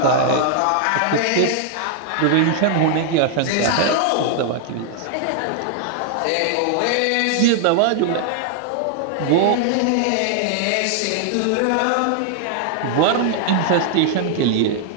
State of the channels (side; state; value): both; different; correlation 0.00